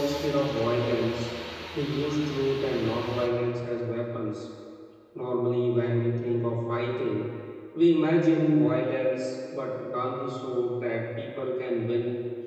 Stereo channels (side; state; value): both; identical; correlation 1.00